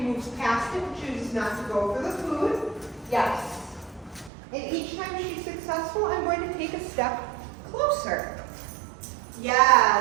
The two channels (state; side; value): drops out; left; at 4.3 s